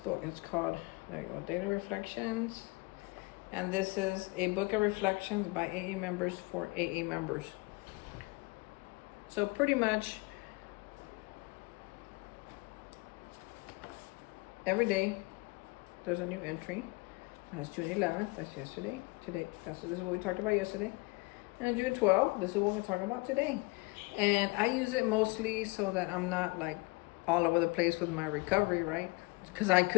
It's called, there you go, Daily Reflections. And this is a book of reflections by AA members for AA members. So pretty much every day there's a new entry. That's June 11th, that's yesterday. Today, this is what we talked about yesterday. And June 12th, this is what we're talking about today. And I use it mostly so that I'm not like all over the place with my recovery, right? Because I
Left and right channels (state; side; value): quieter; right; 25.4 dB